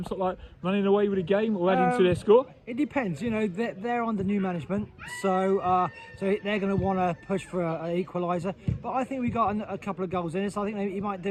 of like running away with the game or adding to their score? It depends. You know, they're under new management, so they're going to want to push for an equaliser. But I think we got a couple of goals in it. So I think you might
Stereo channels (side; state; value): both; identical; correlation 1.00